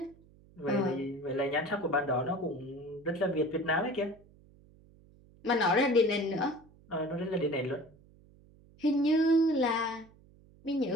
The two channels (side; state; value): right; noise; hum, 27 dB below the sound